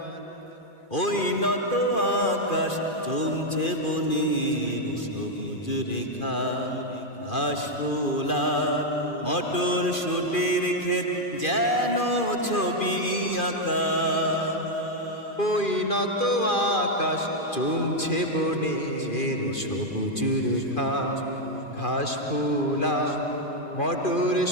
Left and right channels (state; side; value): late; right; 2.4 ms